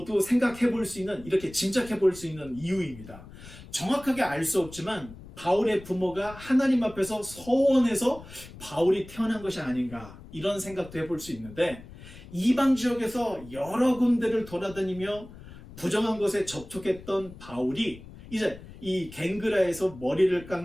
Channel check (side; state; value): left; noise; rumble, 17 dB below the sound